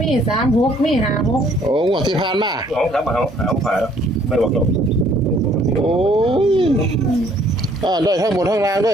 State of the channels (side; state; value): both; normal; correlation 0.61